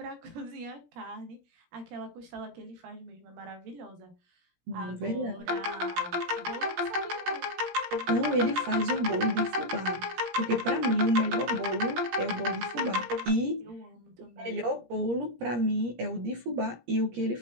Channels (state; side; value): late; left; 17 ms